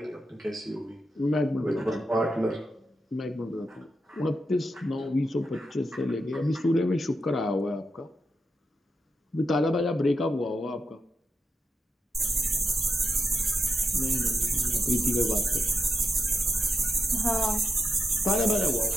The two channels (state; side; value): normal; both; correlation 0.85